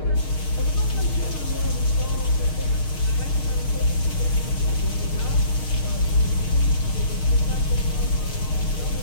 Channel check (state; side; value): late; right; 6.5 ms